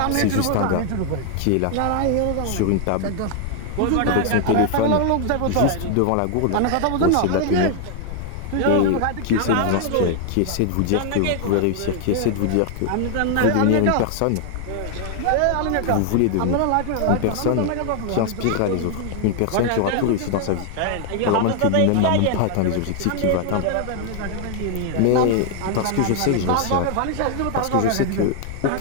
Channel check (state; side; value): different; both; correlation 0.00